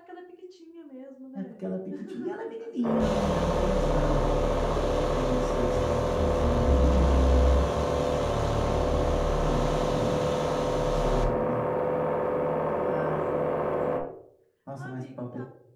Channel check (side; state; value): both; identical; correlation 1.00